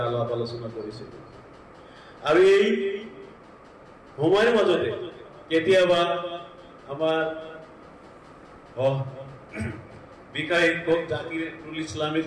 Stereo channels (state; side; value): identical; both; correlation 1.00